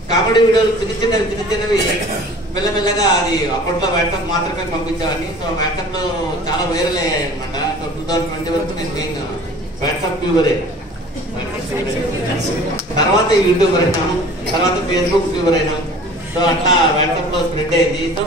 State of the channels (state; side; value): normal; both; correlation 0.46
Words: కామెడీ వీడియోలు చిన్నవి మెల్లమెల్లగా అది అప్పట్లో వాట్సాప్ మాత్రమే పంపించేవాడిని. సో వాట్సాప్ లో చాలా వైరల్ అయ్యాయి అనమాట. సో 2020 వరకు నేను మెయిన్ వాట్సాప్ ట్యూబరే. తర్వాత యూట్యూబర్ అయినాము, తర్వాత ఫేస్బుక్ ట్యూబర్ అయినాం. సో అట్లా వాట్సాప్ లో స్ప్రెడ్ అయింది. సో